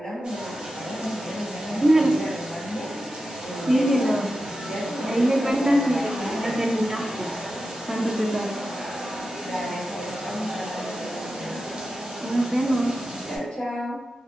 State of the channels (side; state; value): both; normal; correlation 0.91